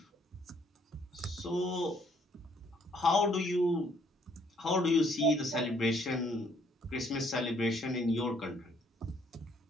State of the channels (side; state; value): both; normal; correlation 0.66